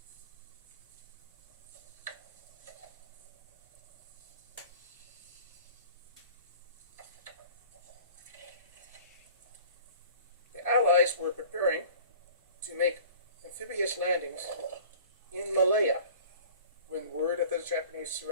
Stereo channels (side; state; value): both; inverted; correlation -0.45